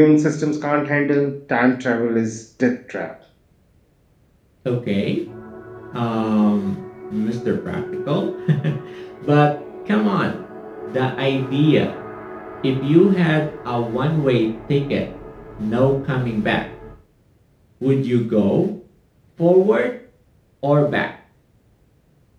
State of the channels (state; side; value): identical; both; correlation 1.00